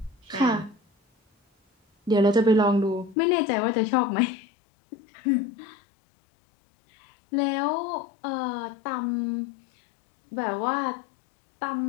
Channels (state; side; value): drops out; right; at 3.2 s